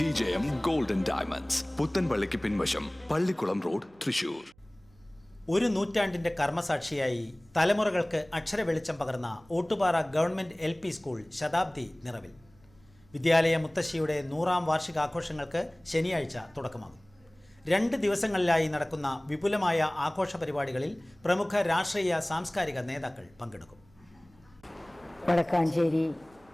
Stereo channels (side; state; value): right; noise; hum, 30 dB below the sound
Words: ഗോൾഡൻ ഡയമണ്ട്സ്, പുത്തൻപള്ളിക്ക് പിൻവശം, പള്ളിക്കുളം റോഡ്, തൃശ്ശൂർ. ഒരു നൂറ്റാണ്ടിന്റെ കർമ്മസാക്ഷിയായി തലമുറകൾക്ക് അക്ഷര വെളിച്ചം പകർന്ന ഓട്ടുപാറ ഗവൺമെന്റ് LP സ്കൂൾ ശതാബ്ദി നിറവിൽ. വിദ്യാലയ മുത്തശ്ശിയുടെ 100ാം വാർഷികാഘോഷങ്ങൾക്ക് ശനിയാഴ്ച തുടക്കമാകും. 2 ദിവസങ്ങളിലായി നടക്കുന്ന വിപുലമായ ആഘോഷ പരിപാടികളിൽ പ്രമുഖ രാഷ്ട്രീയ സാംസ്കാരിക നേതാക്കൾ പങ്കെടുക്കും. വടക്കാഞ്ചേരി